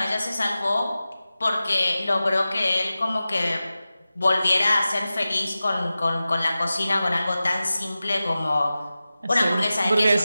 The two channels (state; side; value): inverted; both; correlation -0.95